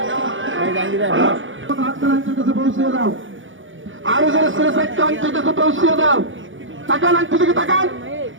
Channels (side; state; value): left; late; 0.56 ms